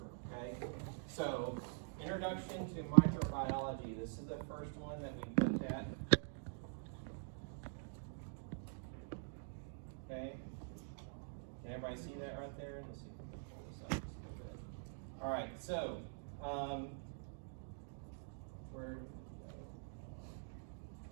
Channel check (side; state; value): left; silent; digital silence